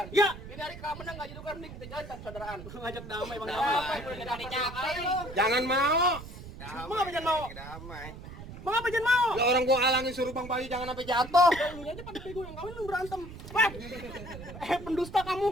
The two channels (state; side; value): noise; right; rumble, 13 dB below the sound